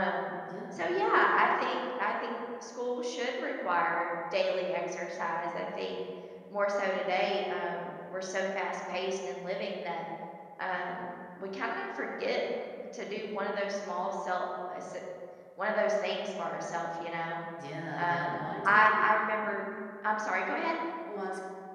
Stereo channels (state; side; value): identical; both; correlation 1.00